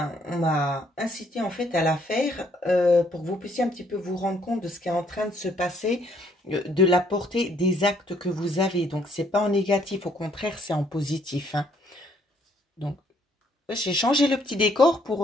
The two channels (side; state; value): both; normal; correlation 0.67